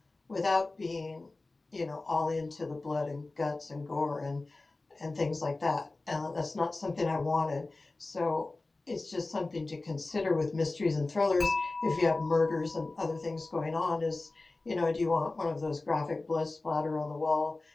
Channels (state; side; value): quieter; right; 3.2 dB